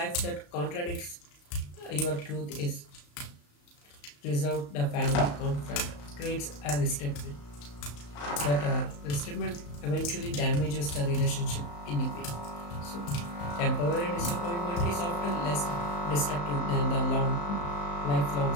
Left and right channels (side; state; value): right; late; 35 ms